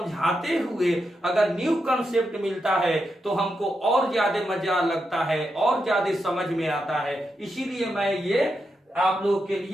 हुए अगर न्यू कंसेप्ट मिलता है तो हमको और ज्यादा मजा लगता है और ज्यादा समझ में आता है। इसीलिए मैं ये आप लोग के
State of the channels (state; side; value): normal; both; correlation 0.85